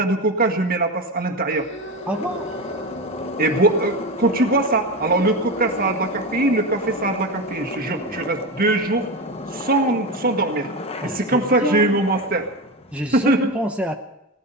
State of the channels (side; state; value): both; normal; correlation 0.19